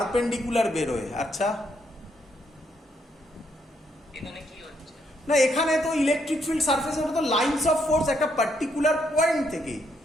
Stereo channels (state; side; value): normal; both; correlation 0.75